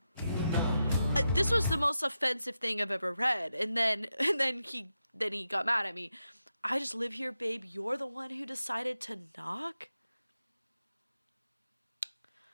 This was the most offensive thing I've ever read, and then he got mad at me. I just live here, babe. You're the one who decided to knock.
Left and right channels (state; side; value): inverted; both; correlation -0.88